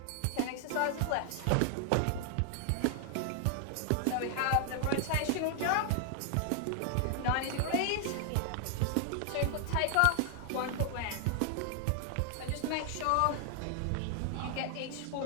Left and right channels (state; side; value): different; both; correlation 0.00